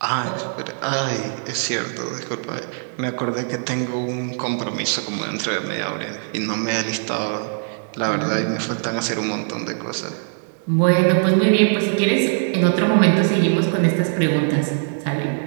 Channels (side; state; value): left; silent; digital silence